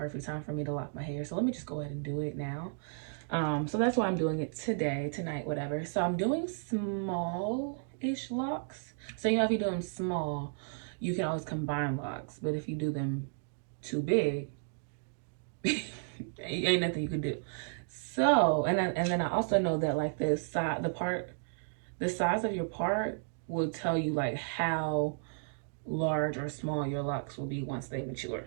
time for me to lock my hair, so let me just go ahead and do it now. So that's why I'm doing it today, tonight, whatever. So I'm doing small-ish locks. So you know, if you do them small, you can always combine locks, but if you do them too big, ain't nothing you can do. So and then I also know that like the size of your part will tell you like how large or small your locks will be once they mature.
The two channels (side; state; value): left; silent; digital silence